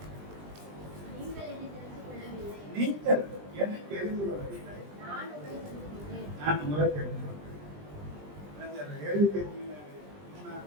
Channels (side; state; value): left; late; 20 ms